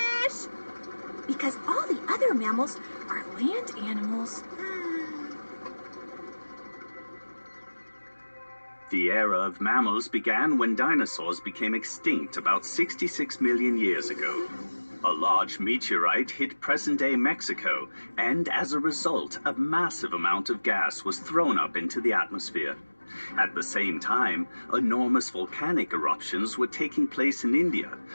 Because all the other mammals are land animals. The era of mammals began when dinosaurs became extinct about 66 million years ago. A large meteorite hit present-day Mexico, and as a result, a massive amount of gas was thrown up into the atmosphere. At the same time, enormous volcanic eruptions were taking place in India,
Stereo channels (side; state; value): both; inverted; correlation -1.00